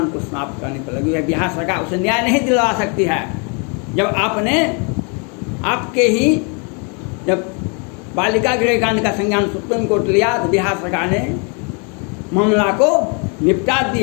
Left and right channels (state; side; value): quieter; right; 35.9 dB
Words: को समाप्त करने पर लगी है। बिहार सरकार उसे न्याय नहीं दिलवा सकती है। जब आपके ही जब बालिका गृह कांड का संज्ञान सुप्रीम कोर्ट लिया तो बिहार सरकार ने मामला को निपटा